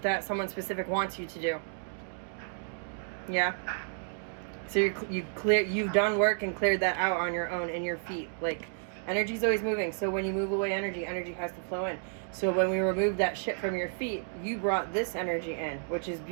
someone specific wants you to do. Yeah. So you've done work and cleared that out on your own in your feet. Like, energy's always moving. So when you move away energy has to flow in. So when we removed that shit from your feet, you brought this energy in, which is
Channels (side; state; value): left; silent; digital silence